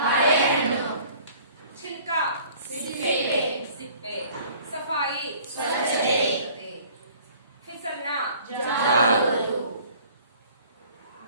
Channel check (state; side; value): inverted; both; correlation -0.52